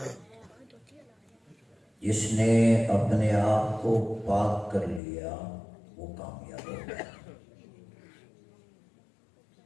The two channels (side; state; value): right; drops out; at 5.0 s